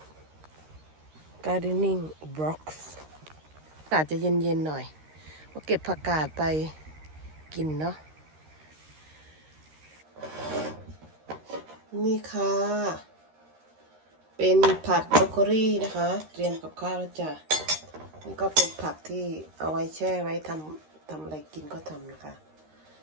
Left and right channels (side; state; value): left; late; 13 ms